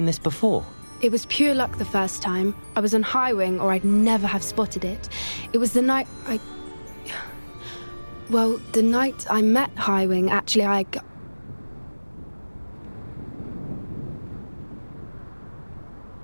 this before? It was pure luck the first time. I was on Highwing or I'd never have spotted it. It was the night Well, the night I met Highwing, actually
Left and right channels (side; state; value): both; inverted; correlation -1.00